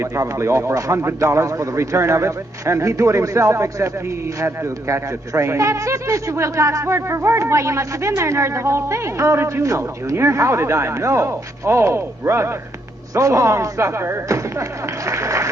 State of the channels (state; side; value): normal; both; correlation 0.76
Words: probably offer $100 for the return of it, and he'd do it himself except he had to catch a train? That's it, Mr. Wilcox, word for word. Why, you must have been there and heard the whole thing. How did you know, Junior? How did I know? Oh, brother. So long, sucker.